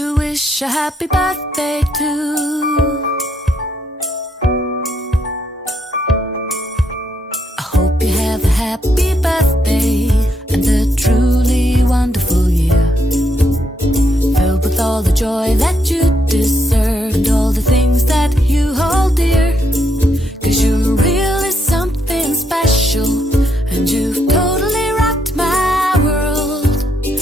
wish a happy birthday to. I hope you have a happy birthday and a truly wonderful year, filled with all the joy that you deserve and all the things that you hold dear. 'Cause you're really something special and you've totally rocked my world.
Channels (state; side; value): normal; both; correlation 0.77